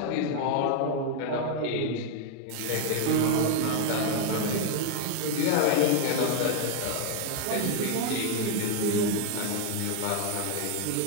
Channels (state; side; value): different; both; correlation 0.00